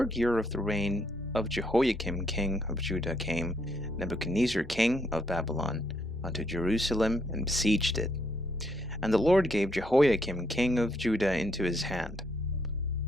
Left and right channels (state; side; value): normal; both; correlation 0.73